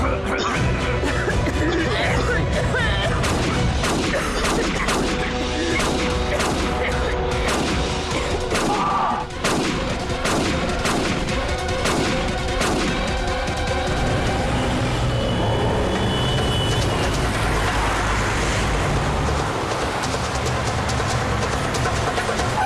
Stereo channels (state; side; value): identical; both; correlation 1.00